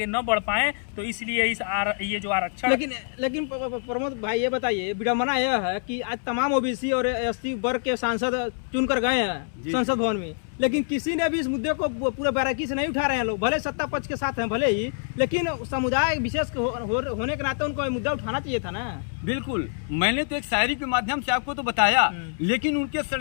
न बढ़ पाएं। तो इसलिए ये जो आरक्षण। लेकिन प्रमोद भाई, ये बताइए, विडम्बना यह है कि आज तमाम ओबीसी और एसटी वर्ग के सांसद चुनकर गए हैं संसद भवन में, लेकिन किसी ने भी इस मुद्दे को पूरे बारीकी से नहीं उठा रहे हैं। लोग भले सत्ता पक्ष के साथ हैं भले ही, लेकिन समुदाय विशेष होने के नाते उनको मुद्दा उठाना चाहिए था ना। बिल्कुल, मैंने तो एक शायरी के माध्यम से आपको तो बताया, लेकिन उनके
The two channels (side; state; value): right; silent; 61 dB below the other